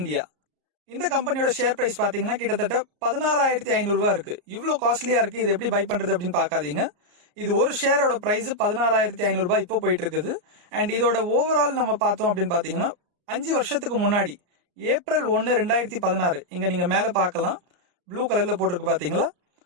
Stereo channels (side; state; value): left; late; 34 ms